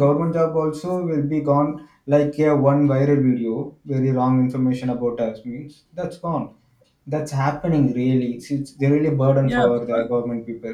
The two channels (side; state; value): both; identical; correlation 1.00